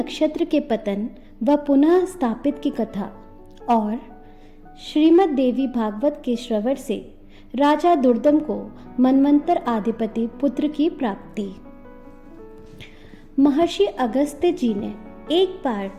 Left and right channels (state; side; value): identical; both; correlation 1.00